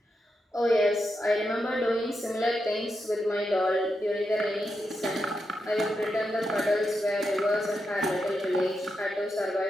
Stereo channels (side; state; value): both; normal; correlation 0.86